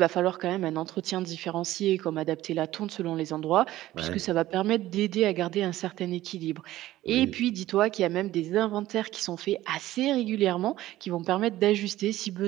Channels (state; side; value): quieter; left; 15.3 dB